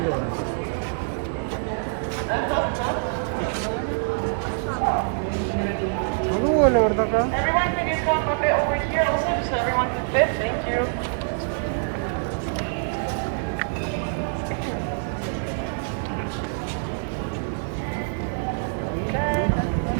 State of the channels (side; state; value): left; silent; digital silence